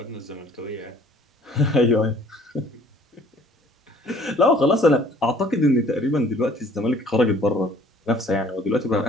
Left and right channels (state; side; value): normal; both; correlation 0.55